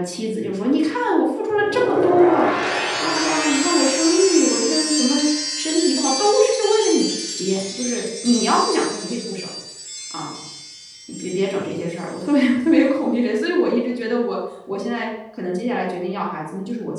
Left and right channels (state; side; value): identical; both; correlation 1.00